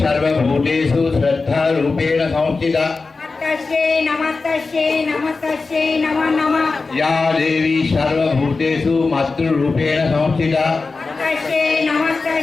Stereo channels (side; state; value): right; quieter; 4.0 dB